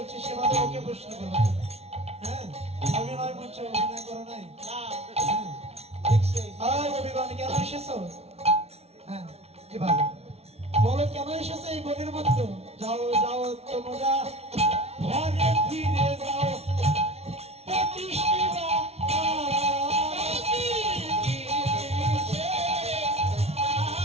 সেভাবে ওকে প্রশ্ন করো। হ্যাঁ অভিনয় করছো, অভিনয় করো নাই? কবিগণ কেন এসেছো? হ্যাঁ এভাবে বলো কেন এসেছো এই বনের মধ্যে? যাও যাও তোমরা ঘরে ফিরে যাও,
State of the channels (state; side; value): late; left; 0.31 ms